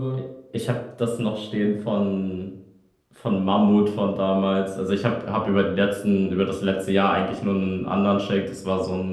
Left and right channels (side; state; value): both; identical; correlation 1.00